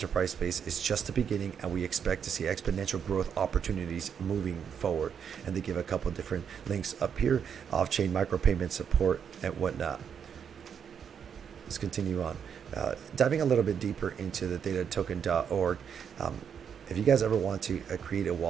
space is just the beginning, and we expect to see exponential growth opportunities moving forward. And they give a couple different links up here: off-chain micropayment support and whatnot. Let's continue on. Diving a little bit deeper into the ThetaToken.org. If you guys ever want to create a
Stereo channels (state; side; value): quieter; left; 7.6 dB